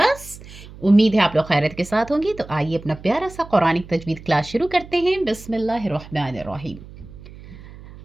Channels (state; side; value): noise; right; hum, 17 dB below the sound